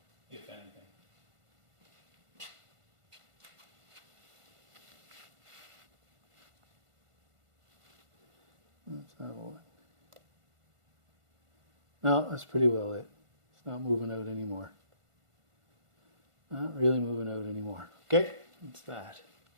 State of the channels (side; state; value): left; late; 1.5 ms